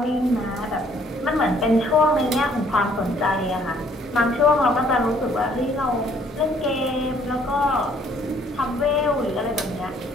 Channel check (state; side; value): normal; both; correlation 0.62